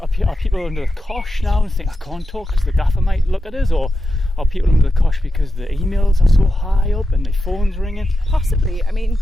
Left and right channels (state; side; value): normal; both; correlation 0.90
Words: under the cosh now and think I can't talk because the gaffer might look at us, or are people under the cosh because the emails are so high up and the phone's ringing? Possibly. I mean,